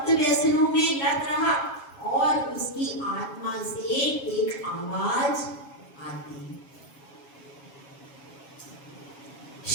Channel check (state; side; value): late; right; 7.3 ms